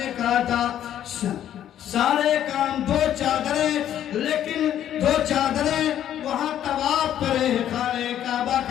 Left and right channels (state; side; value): quieter; right; 10.9 dB